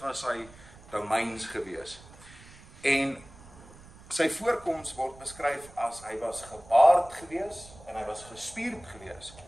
sy domeins gewees. En sy voorkoms word beskryf as hy was gebaard gewees en hy was gespierd gewees.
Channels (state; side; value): noise; right; rumble, 21 dB below the sound